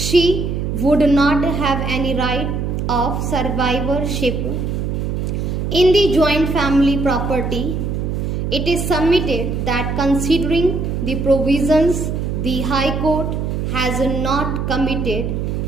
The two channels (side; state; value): right; noise; hum, 2 dB below the sound